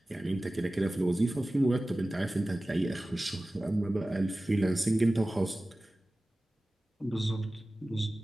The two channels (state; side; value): normal; both; correlation 0.97